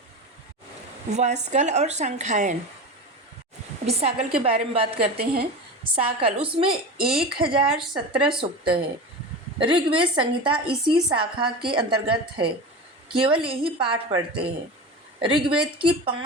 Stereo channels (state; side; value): normal; both; correlation 0.28